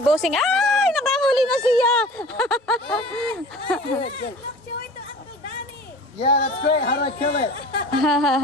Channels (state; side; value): normal; both; correlation 0.42